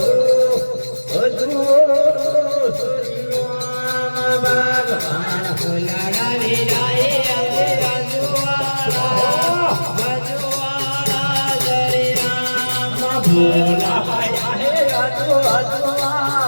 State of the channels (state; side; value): inverted; both; correlation -1.00